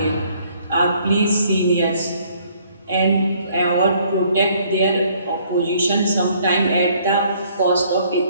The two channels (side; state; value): both; inverted; correlation -0.62